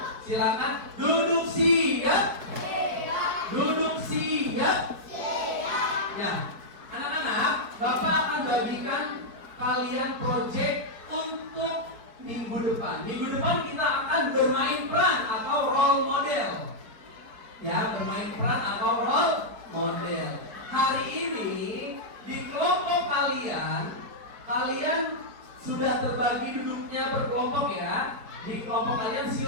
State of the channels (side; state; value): left; late; 4.6 ms